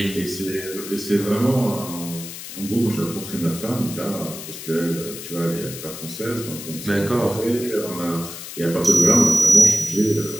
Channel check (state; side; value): noise; left; hiss, 11 dB below the sound